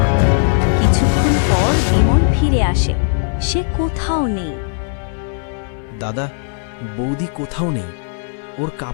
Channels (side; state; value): right; silent; 68 dB below the other